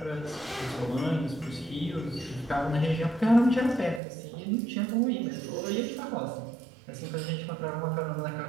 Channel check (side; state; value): left; drops out; at 4.0 s